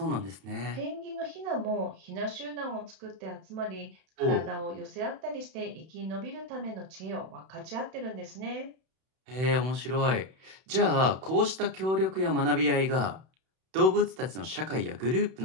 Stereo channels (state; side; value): late; left; 31 ms